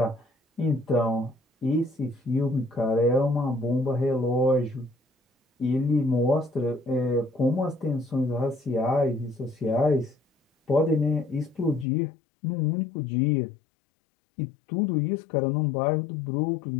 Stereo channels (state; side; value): drops out; right; at 11.9 s